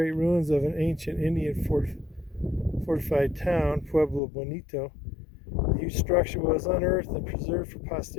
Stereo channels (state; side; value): drops out; right; at 4.2 s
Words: ruins of an ancient Indian fortified town, Pueblo, Bonito. The huge structure was unearthed and preserved for